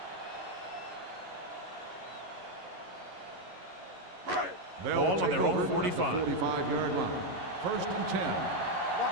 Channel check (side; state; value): left; late; 11 ms